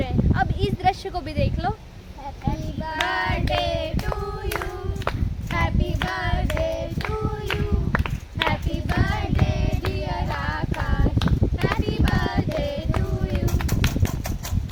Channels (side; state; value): both; identical; correlation 1.00